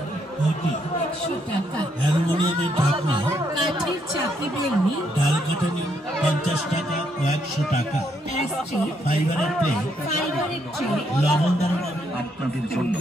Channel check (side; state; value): both; normal; correlation 0.74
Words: ঘটি 100 টাকা অ্যালুমিনিয়ামের ঢাকনা কাঠের চাপি বেলনি ডাল কাটানি 50 টাকা ও 100 টাকা প্লাস্টিক ফাইবারের প্লেট ফাইবারের ট্রে লবণ দারুণ আপনাদের জন্য